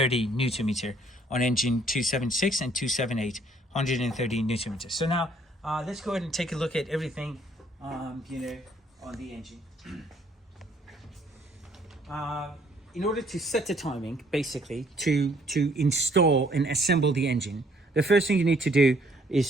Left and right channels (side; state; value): both; normal; correlation 0.64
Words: Newton meter on engine 276 and 278, 130 Newton meter. So now let's go ahead and take a look at everything, on the engine. In order to set the timing, basically, to install and assemble the engine, the first thing you need to do